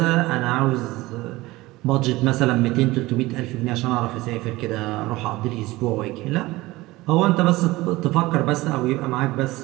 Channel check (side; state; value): left; quieter; 19.6 dB